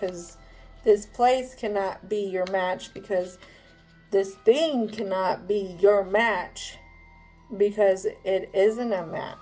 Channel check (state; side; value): identical; both; correlation 1.00